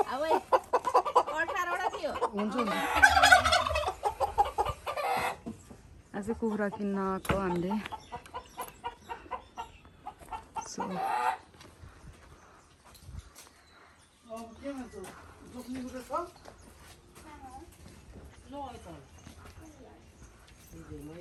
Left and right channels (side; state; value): both; identical; correlation 1.00